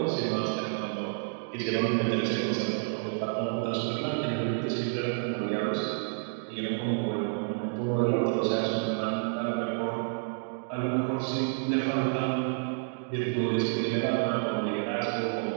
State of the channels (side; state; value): left; silent; digital silence